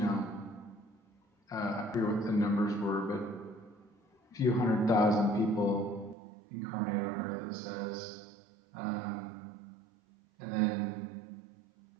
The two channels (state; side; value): drops out; left; at 6.2 s